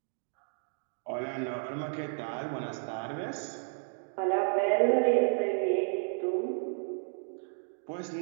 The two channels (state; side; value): silent; left; 56 dB below the other